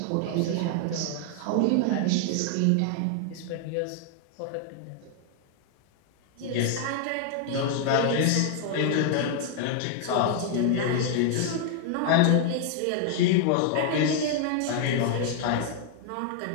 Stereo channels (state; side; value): different; both; correlation 0.00